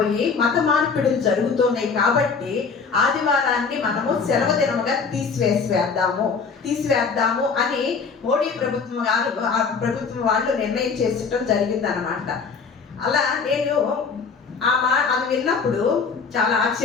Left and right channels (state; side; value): quieter; right; 5.3 dB